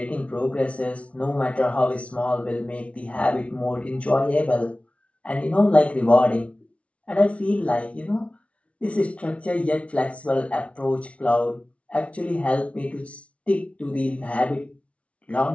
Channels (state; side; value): late; right; 0.063 ms